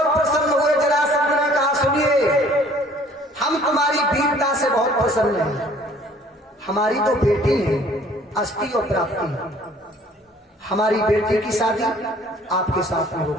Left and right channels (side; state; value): both; normal; correlation 0.55